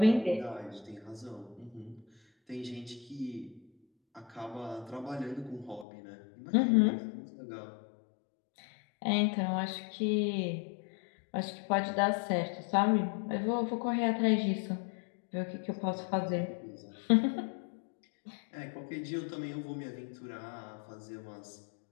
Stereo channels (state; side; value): drops out; right; at 5.9 s